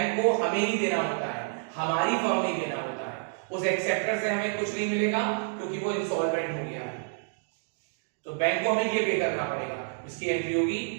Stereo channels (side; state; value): left; silent; digital silence